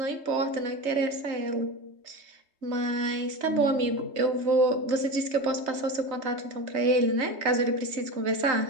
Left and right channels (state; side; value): late; left; 3.2 ms